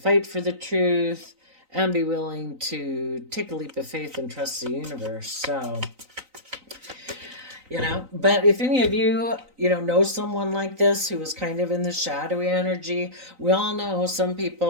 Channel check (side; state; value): left; late; 3.9 ms